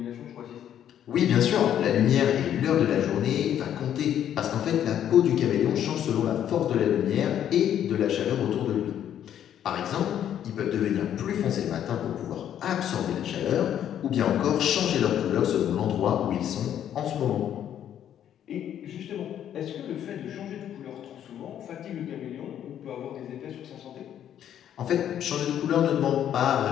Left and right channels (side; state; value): right; quieter; 10.2 dB